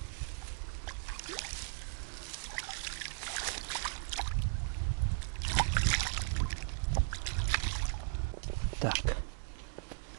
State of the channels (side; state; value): left; silent; digital silence